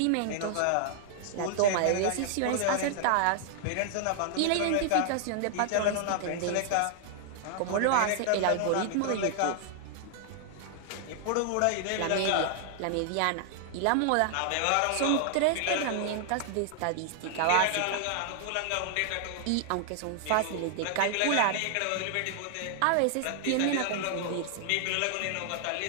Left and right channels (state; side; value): different; both; correlation 0.00